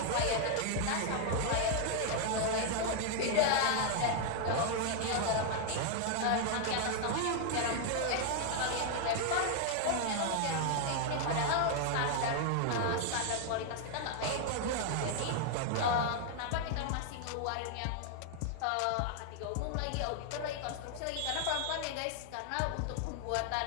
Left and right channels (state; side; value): different; both; correlation 0.00